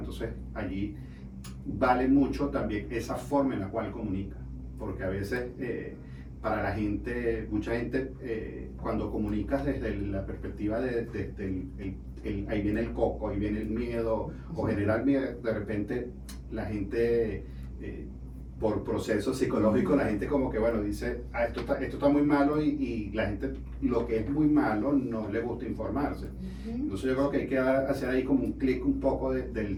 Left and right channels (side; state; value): both; identical; correlation 1.00